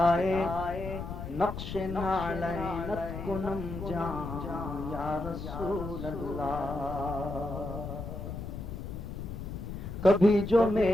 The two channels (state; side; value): noise; left; rumble, 7 dB below the sound